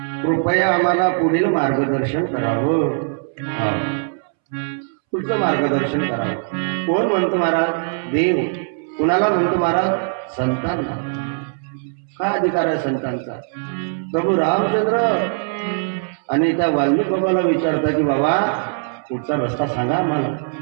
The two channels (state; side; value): silent; left; 65 dB below the other